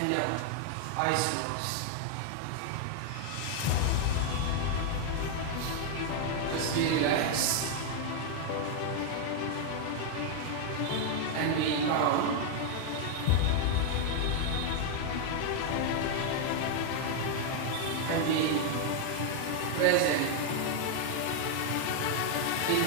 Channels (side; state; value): both; different; correlation 0.00